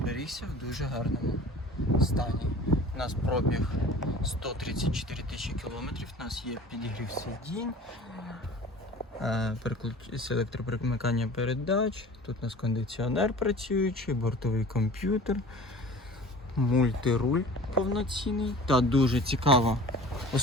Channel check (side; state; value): both; normal; correlation 0.43